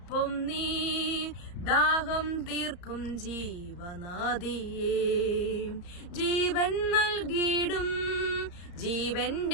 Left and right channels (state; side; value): late; right; 34 ms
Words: നീ, ദാഹം തീർക്കും ജീവനാദിയേ. ജീവൻ നൽകിയിടും